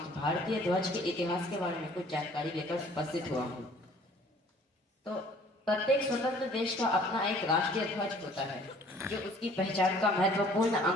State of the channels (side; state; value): both; normal; correlation 0.55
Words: भारतीय ध्वज के इतिहास के बारे में कुछ जानकारी लेकर उपस्थित हुआ हूँ। तो प्रत्येक स्वतंत्र देश का अपना एक राष्ट्रीय ध्वज होता है जो उसकी पहचान का महत्वपूर्ण